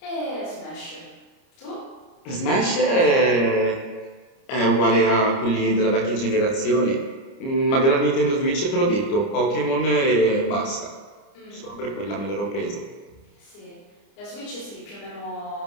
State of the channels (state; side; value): late; right; 30 ms